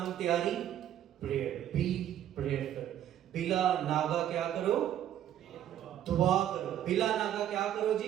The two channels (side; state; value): left; quieter; 11.1 dB